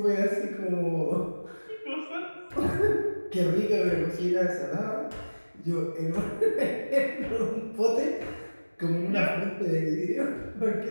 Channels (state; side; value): inverted; both; correlation -1.00